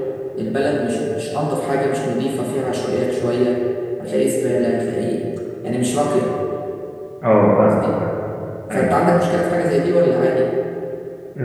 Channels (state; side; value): identical; both; correlation 1.00